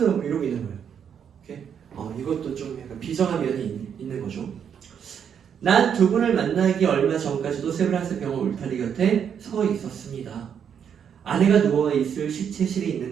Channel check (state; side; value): quieter; left; 8.0 dB